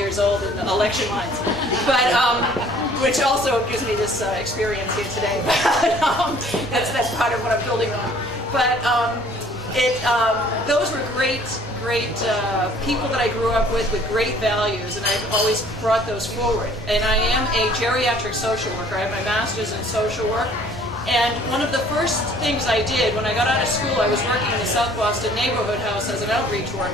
old in the election lines, but which also gives me this experience here today. But that's part of what I'm building on. But those were great people that I grew up with great values, and I've always brought those forward. And I am a geriatric social worker. I have my master's in social work. And one of the first things I did when I got out of school, I was working in the South Boston neighborhood house as an outreach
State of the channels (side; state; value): both; normal; correlation 0.55